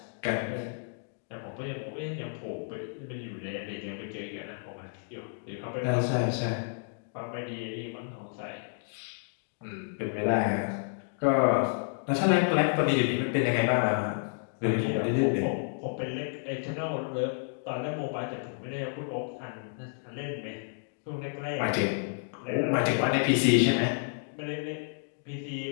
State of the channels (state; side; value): silent; right; digital silence